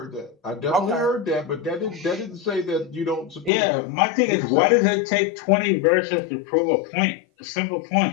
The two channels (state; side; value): drops out; right; at 3.5 s